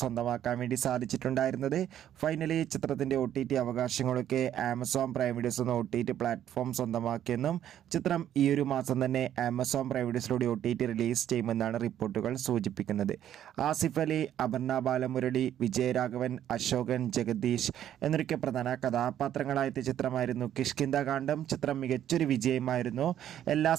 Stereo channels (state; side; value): quieter; left; 11.0 dB